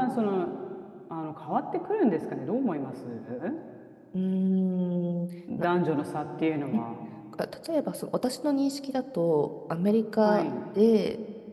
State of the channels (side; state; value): both; identical; correlation 1.00